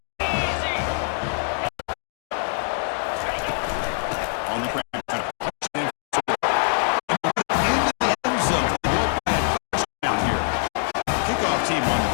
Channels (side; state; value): right; silent; digital silence